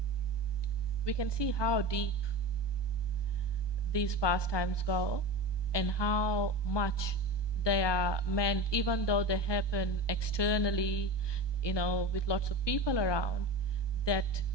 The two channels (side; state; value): right; late; 1.2 ms